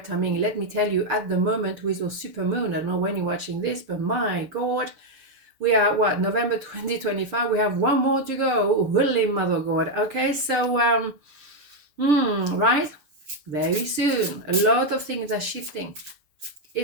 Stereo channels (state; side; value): late; left; 7.0 ms